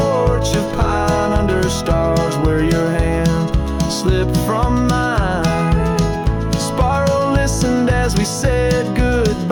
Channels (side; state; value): both; identical; correlation 1.00